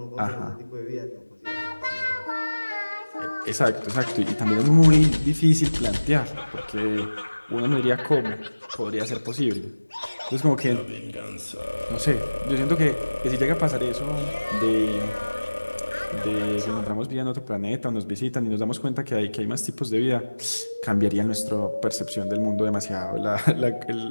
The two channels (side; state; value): both; inverted; correlation -1.00